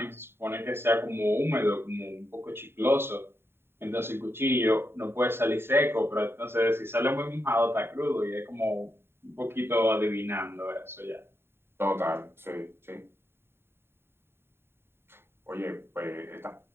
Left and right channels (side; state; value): left; late; 0.11 ms